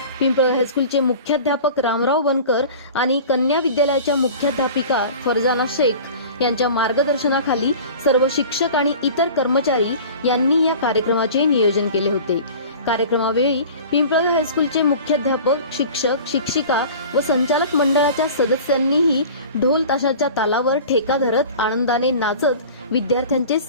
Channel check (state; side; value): inverted; both; correlation -0.40